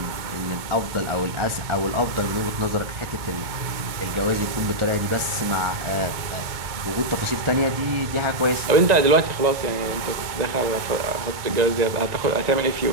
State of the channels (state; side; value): late; left; 2.1 ms